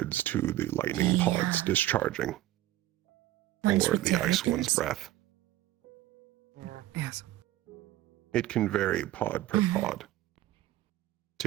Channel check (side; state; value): left; quieter; 14.6 dB